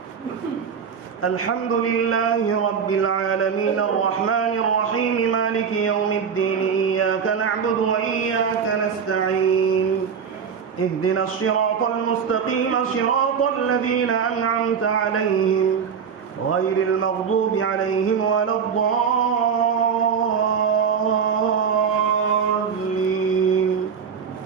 الحمد لله رب العالمين الرحمن الرحيم مالك يوم الدين إياك نعبد وإياك نستعين اهدنا الصراط المستقيم صراط الذين أنعمت عليهم غير المغضوب عليهم ولا الضالين.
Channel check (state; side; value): quieter; left; 6.7 dB